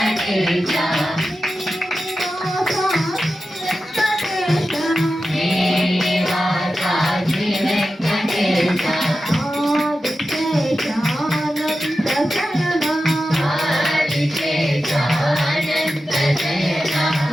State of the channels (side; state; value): both; normal; correlation 0.92